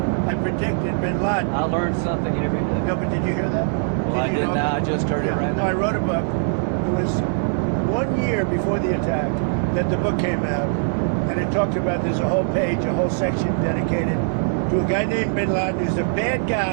I predicted Bin Laden. I learned something every day. No, but did you hear that? Well, I Did you did know? now. I just heard it right No, I now. wrote a book. It was 1 year before the attack that the book came out, and it talked about, there's a whole page, a whole section dedicated to a guy named Bin Laden who's a bad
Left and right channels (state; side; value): silent; left; digital silence